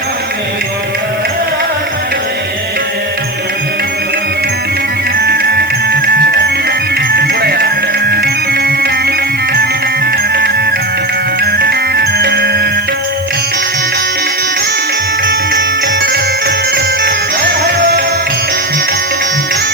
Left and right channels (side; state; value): right; noise; hiss, 19 dB below the sound